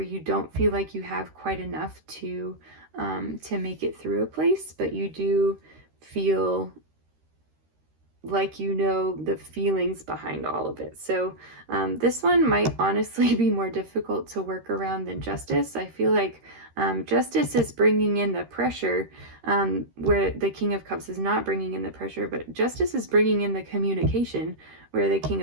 you don't feel like you have quite enough to make it through a place, but you do feel like you know the feelings behind all of it. So this one might honestly be more difficult to work around than Justice. I feel like Justice is bringing in the pressure, where the King of Cups is not bringing in the pressure, but Justice is bringing in the communication, where the King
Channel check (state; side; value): late; left; 13 ms